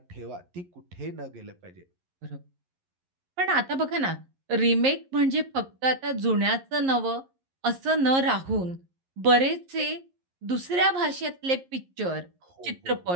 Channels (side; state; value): left; late; 11 ms